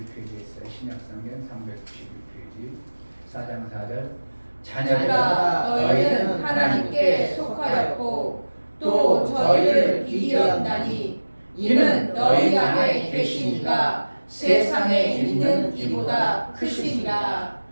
있어요. 신약성경 391페이지 4장 4절. 자녀들아 너희는 하나님께 속하였고 또 저희를 이기었나니 이는 너희 안에 계신 이가 세상에 있는 이보다 크시니라.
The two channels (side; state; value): both; inverted; correlation -1.00